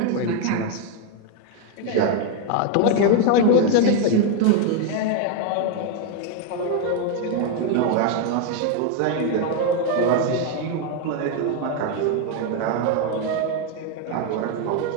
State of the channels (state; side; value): different; both; correlation 0.01